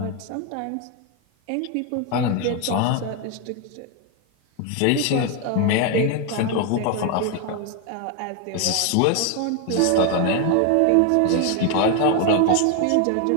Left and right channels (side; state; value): both; different; correlation 0.01